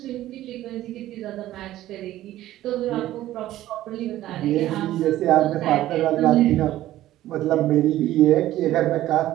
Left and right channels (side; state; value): left; quieter; 14.3 dB